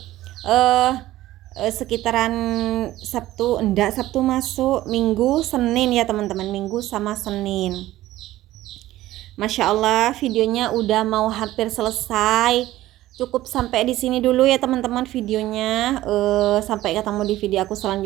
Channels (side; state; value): left; quieter; 15.5 dB